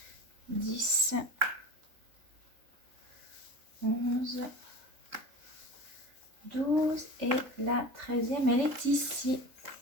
10, 11, 12 et la 13e, elle est ici.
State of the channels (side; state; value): left; late; 3.7 ms